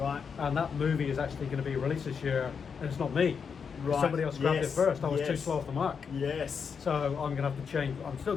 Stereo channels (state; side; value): quieter; right; 6.3 dB